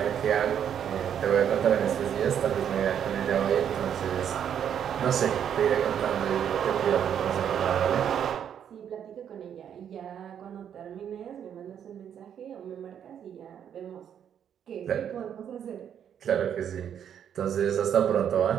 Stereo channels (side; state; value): left; quieter; 8.9 dB